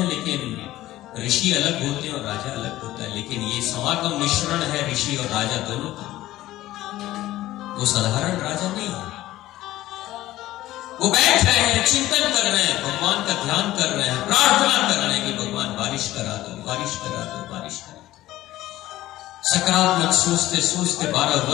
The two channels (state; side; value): quieter; right; 15.5 dB